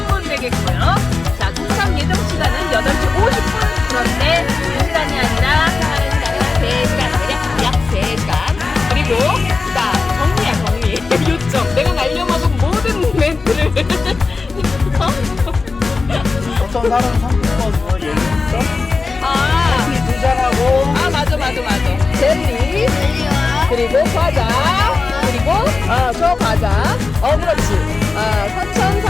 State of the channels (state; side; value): quieter; right; 4.1 dB